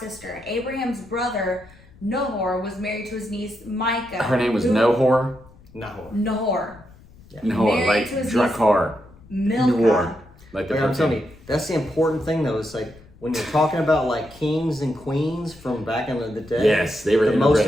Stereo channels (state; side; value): noise; left; rumble, 24 dB below the sound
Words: sister. Abraham's brother, Nahor, was married to his niece, Micah. Her name was Nahor? Nahor. Yeah. Nahor, like Drakkar. Milcah. Like I'm telling you, that's the important thing though. It's like when you're talking about like kings and queens from back in the day. Yes, they were the most